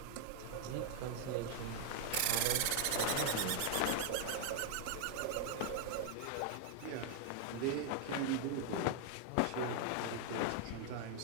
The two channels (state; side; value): different; both; correlation 0.00